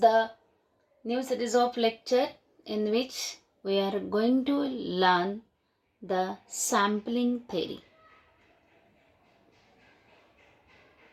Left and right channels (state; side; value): identical; both; correlation 1.00